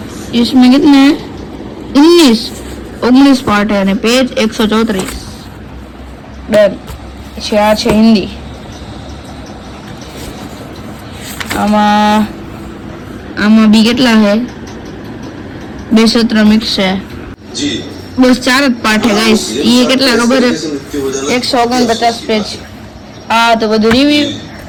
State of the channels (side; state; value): both; identical; correlation 1.00